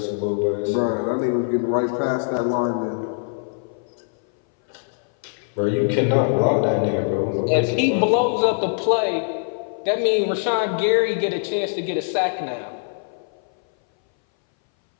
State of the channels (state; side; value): silent; right; 60 dB below the other